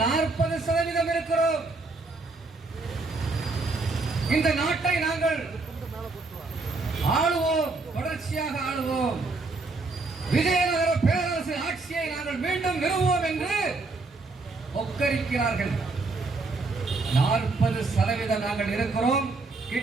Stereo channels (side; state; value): left; quieter; 3.6 dB